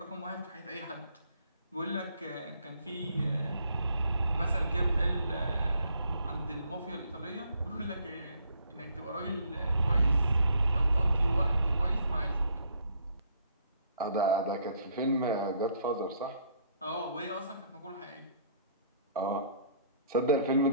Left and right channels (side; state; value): both; inverted; correlation -0.65